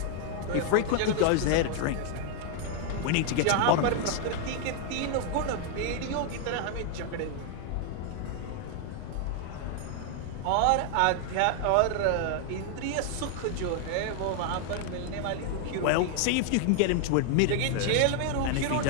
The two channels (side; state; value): both; different; correlation 0.00